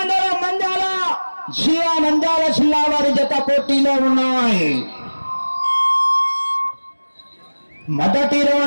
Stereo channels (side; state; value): both; inverted; correlation -1.00